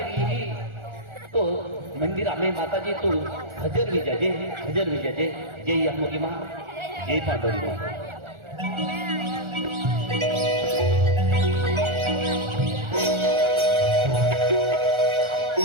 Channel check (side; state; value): left; late; 1.4 ms